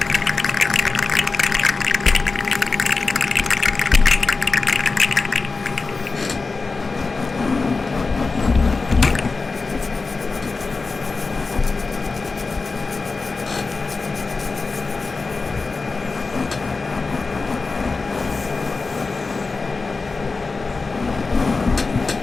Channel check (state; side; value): quieter; right; 4.0 dB